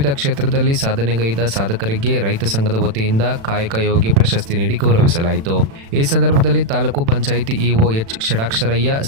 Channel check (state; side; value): late; left; 36 ms